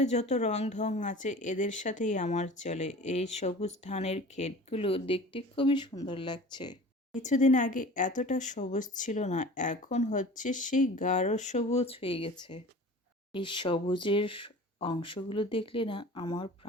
যত রং ঢং আছে এদের সাথেই আমার চলে। এই সবুজ ধানের ক্ষেতগুলো দেখতে খুবই সুন্দর লাগছে। কিছুদিন আগে এতটা সবুজ ছিল না, এখন হচ্ছে সেই গাঢ় সবুজ হয়ে গেছে। এই সবুজের অংশগুলো দেখলে না আমার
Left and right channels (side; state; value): both; normal; correlation 0.41